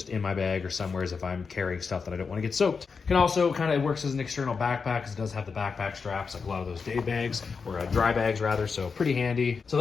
in my bag or somewhere if I'm carrying stuff that I don't want to get soaked. Can also kind of works as an external backpack because it does have the backpack straps like a lot of those day bags, or dry bags rather, so pretty handy. So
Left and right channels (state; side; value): quieter; right; 5.3 dB